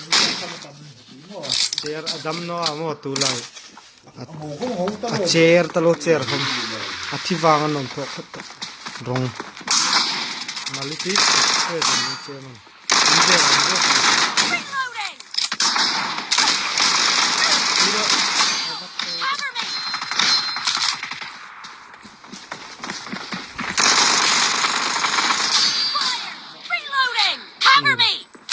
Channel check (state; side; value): identical; both; correlation 1.00